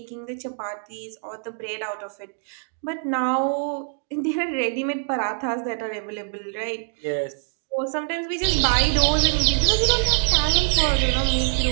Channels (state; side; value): silent; left; digital silence